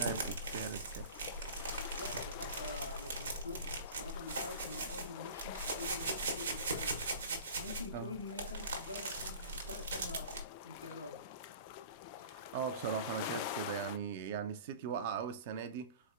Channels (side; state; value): both; inverted; correlation -0.40